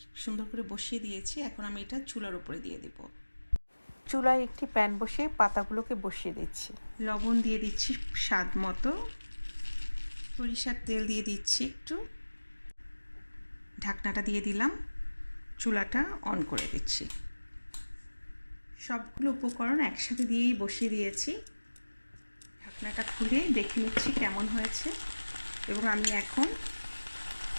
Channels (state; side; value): inverted; both; correlation -1.00